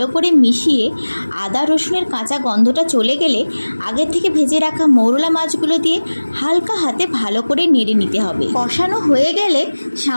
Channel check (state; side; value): inverted; both; correlation -1.00